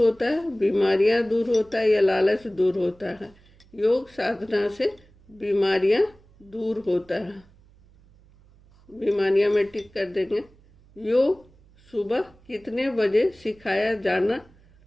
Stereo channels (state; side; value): noise; right; hum, 28 dB below the sound